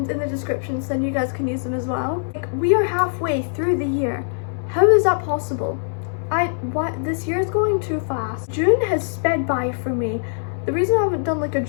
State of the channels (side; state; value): right; silent; 64 dB below the other